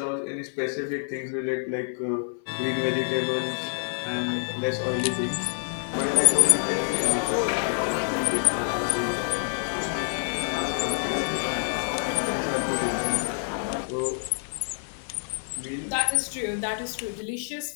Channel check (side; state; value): right; silent; 60 dB below the other